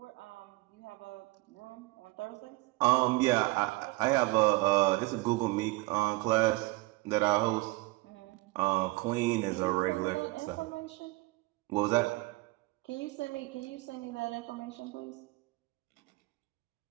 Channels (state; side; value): quieter; left; 22.8 dB